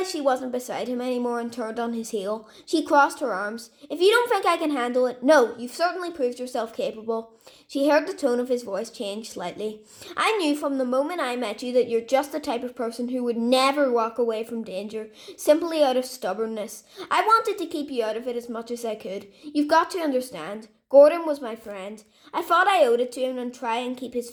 she wasn't beside him anymore and turned on his heel. She crossed her arms. If you don't think I can handle it, no, you've certainly proved yourself capable. She heard the tone of his voice change slightly. I knew from the moment I met you that you're just the type of person who would never walk away from danger, simply out of stubbornness. I wanted to keep you out of it as much as I could. You've got to understand. Gordon was my friend. I thought I owed it to him and try and keep his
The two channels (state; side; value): identical; both; correlation 1.00